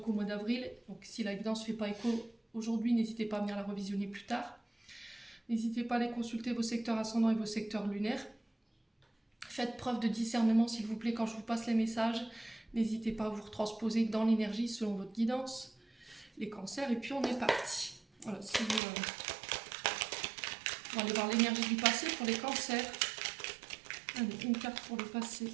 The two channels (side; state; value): left; drops out; at 18.8 s